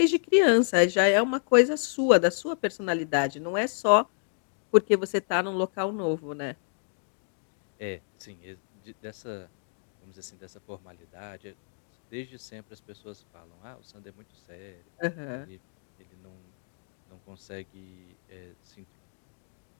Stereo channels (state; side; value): silent; right; 58 dB below the other